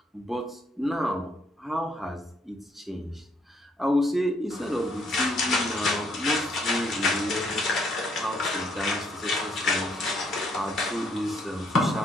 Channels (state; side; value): normal; both; correlation 0.69